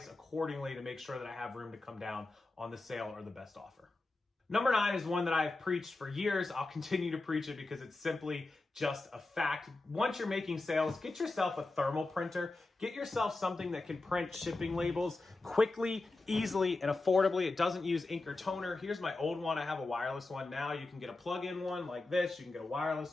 accordingly to make sure that I have room to come down on the sale or the best offer. Number 9 is one that I've preached for years. I'll continue to preach it because it's simply just a fact. Once you're making sales, get yourself a thermal printer. Get yourself something that can print shipping labels quickly, easily, and affordably. It doesn't use ink or toner. Here's my old one. I have a wireless one now. You can get a plug-in one like this. You can get a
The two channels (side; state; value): right; quieter; 3.2 dB